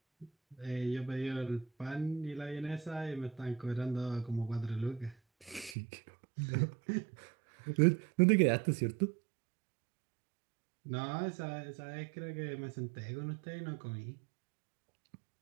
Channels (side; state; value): left; drops out; at 5.8 s